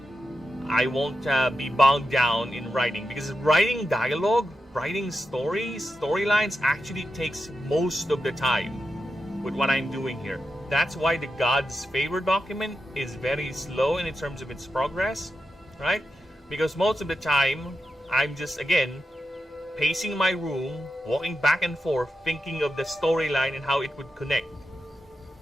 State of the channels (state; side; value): normal; both; correlation 0.88